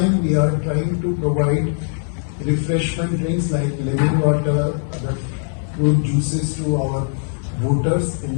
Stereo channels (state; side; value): silent; right; 66 dB below the other